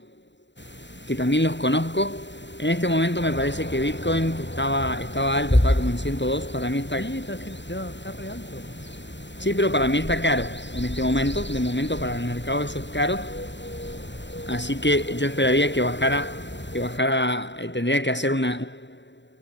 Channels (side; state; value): right; late; 0.52 ms